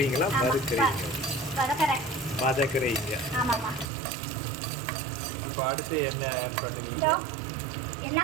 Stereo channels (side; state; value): left; drops out; at 3.9 s